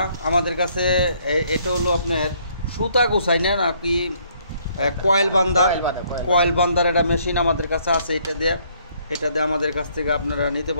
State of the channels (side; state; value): both; inverted; correlation -0.66